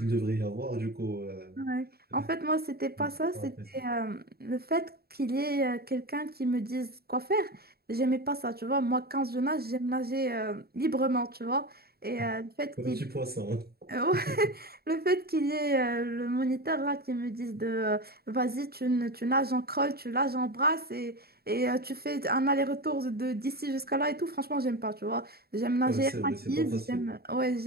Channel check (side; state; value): left; late; 0.45 ms